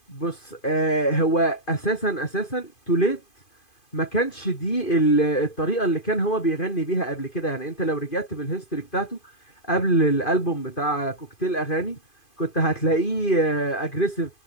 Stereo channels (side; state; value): right; late; 2.5 ms